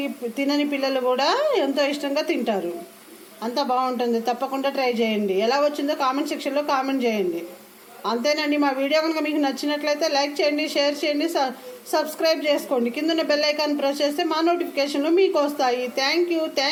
తినని పిల్లలు కూడా ఎంతో ఇష్టంగా తింటారు. అంత బాగుంటుంది. తప్పకుండా ట్రై చేయండి. ఎలా వచ్చిందో కామెంట్ సెక్షన్లో కామెంట్ చేయండి. అంతేనండి. మా వీడియో కనుక మీకు నచ్చినట్లయితే లైక్ చేయండి, షేర్ చేయండి, సబ్స్క్రైబ్ చేసుకోండి. కింద బెల్ ఐకాన్ ప్రెస్ చేస్తే మా నోటిఫికేషన్లు మీకు వస్తాయి. Thank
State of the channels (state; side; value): identical; both; correlation 1.00